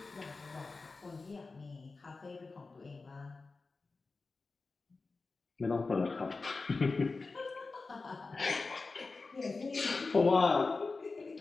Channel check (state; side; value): quieter; right; 3.9 dB